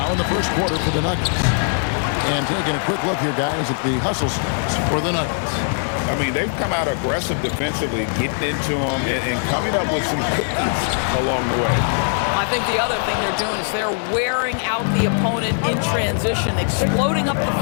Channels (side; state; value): right; silent; 64 dB below the other